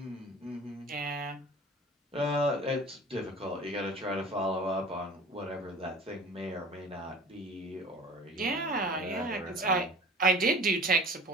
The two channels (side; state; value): both; normal; correlation 0.43